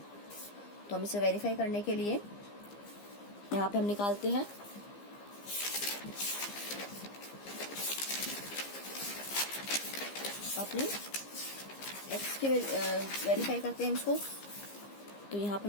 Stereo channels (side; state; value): right; late; 15 ms